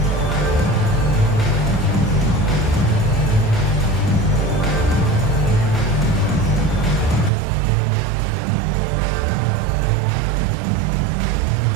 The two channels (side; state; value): left; drops out; at 7.3 s